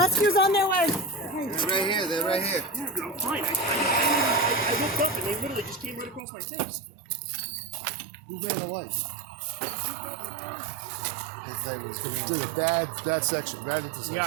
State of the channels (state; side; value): drops out; left; at 6.2 s